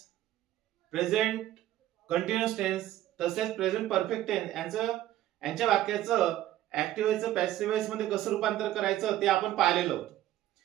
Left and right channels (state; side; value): quieter; left; 13.7 dB